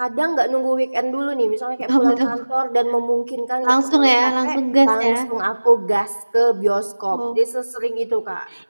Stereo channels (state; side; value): inverted; both; correlation -1.00